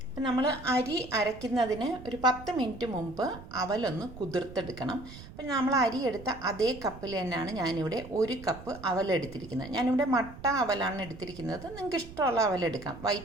അപ്പം നമ്മൾ അരി അരയ്ക്കുന്നതിന് ഒരു 10 മിനിറ്റ് മുമ്പ് അവലൊന്ന് കുതിർത്തെടുക്കണം. അപ്പം നമ്മൾ അരി എടുത്ത അതേ കപ്പിൽ തന്നെയാണ് ഞാനിവിടെ 1 കപ്പ് അവലെടുത്തിരിക്കുന്നത്. ഞാനിവിടെ മട്ട അവലാണ് എടുത്തിരിക്കുന്നത്. നിങ്ങൾക്ക് ഇഷ്ടമുള്ള അവലെടുക്കാം.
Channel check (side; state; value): right; noise; rumble, 16 dB below the sound